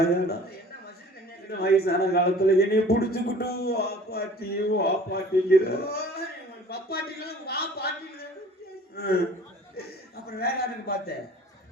என்ன மசில் கண்ணியா? இந்த வயசான காலத்துல என்னைய புடிச்சுக்கிட்டு வா பாட்டிங்கிற. பப்பாட்டிலாம் வா பாட்டில. அப்புறம் வேற யாருக்கு பார்த்தேன்?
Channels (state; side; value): normal; both; correlation 0.48